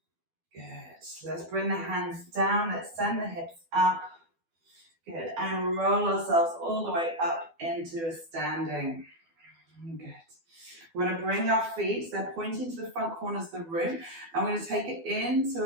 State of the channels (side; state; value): left; late; 12 ms